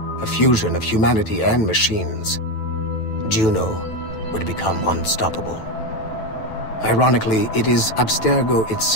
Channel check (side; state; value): right; late; 9.1 ms